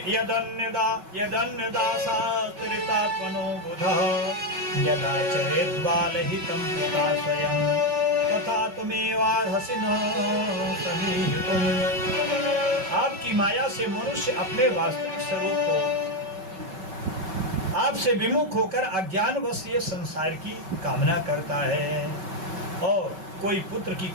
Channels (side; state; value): left; late; 5.3 ms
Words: यदन्यदासात्रितात्मनो बुधः यदा चरेद्बालहितं पिता स्वयं तथा तुमेवार्हसि न समीहितुम्। आपकी माया से मनुष्य अपने वास्तविक स्वरूप को आपसे विमुख होकर अज्ञानवश ये संसार की कामना करता है, और कोई पुत्र की